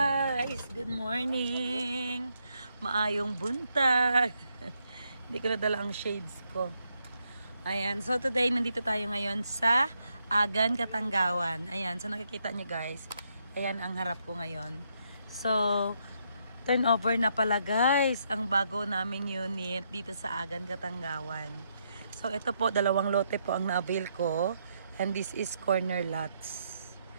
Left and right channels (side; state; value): both; inverted; correlation -0.77